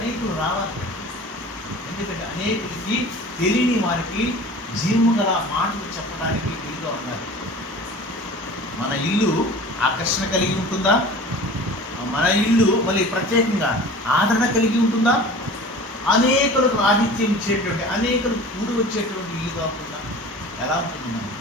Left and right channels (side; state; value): both; normal; correlation 0.40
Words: రావాలి. ఎందుకంటే అనేకులకి తెలియని వారికి జీవము గల మాటలు చెప్పడానికి వీలుగా ఉన్నారు. మన ఇల్లు ఆకర్షణ కలిగి ఉంటుందా? మన ఇల్లు మళ్ళీ ప్రత్యేకంగా ఆదరణ కలిగి ఉంటుందా? అనేకులకు ఆతిథ్యం ఇచ్చేటువంటి, అనేకులు కూడి వచ్చేటువంటి ఇల్లు కాకుండా ఎలా ఉంటుంది మనం?